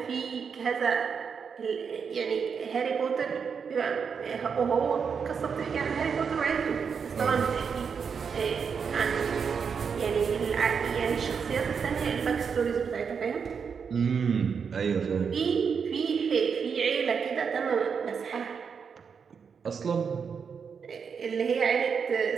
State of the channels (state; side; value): quieter; left; 6.3 dB